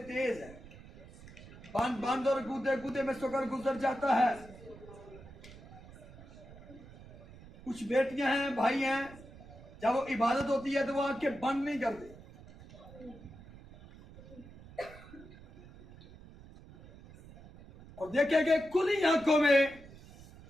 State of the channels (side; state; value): right; noise; rumble, 19 dB below the sound